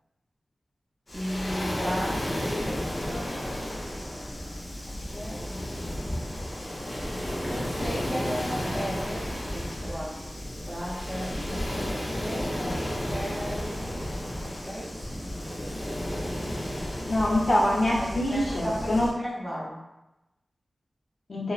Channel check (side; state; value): both; normal; correlation 0.96